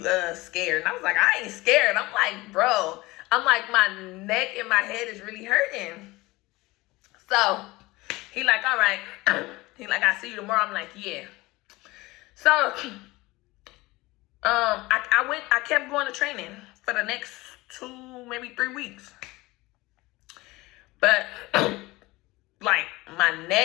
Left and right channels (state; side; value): quieter; right; 20.8 dB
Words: scared. And I was like, I ain't scared. I'm like, bro, my neck and my head is really hurting. So he like, all right. He like, I'll see you tomorrow. I'm like, yeah. So I kept going to training for the next 2, maybe 3 weeks. But like my